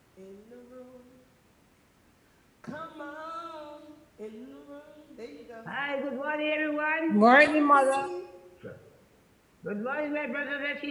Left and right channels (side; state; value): both; identical; correlation 1.00